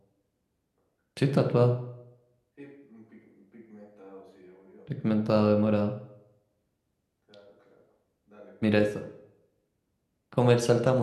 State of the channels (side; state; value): both; identical; correlation 1.00